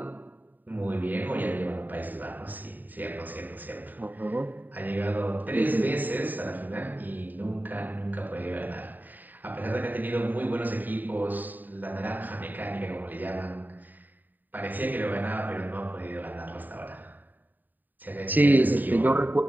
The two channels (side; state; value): left; late; 0.088 ms